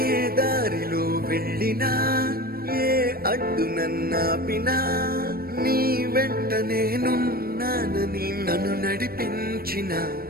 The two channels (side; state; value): left; late; 0.44 ms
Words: దారిలో వెళ్ళినా ఏ అడ్డు నన్నాపినా నీ వెంట నేనున్నానని నన్ను నడిపించిన